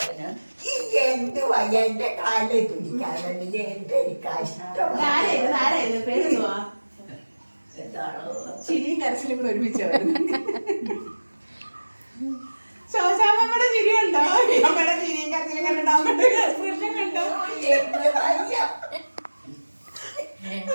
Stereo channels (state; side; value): inverted; both; correlation -1.00